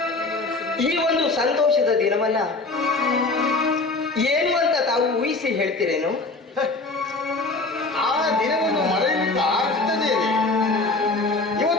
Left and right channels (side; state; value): right; quieter; 3.4 dB